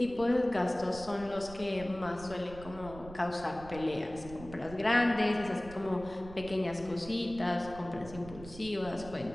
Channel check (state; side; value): noise; right; rumble, 15 dB below the sound